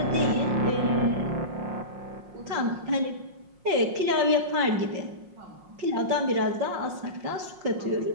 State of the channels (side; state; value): left; late; 5.6 ms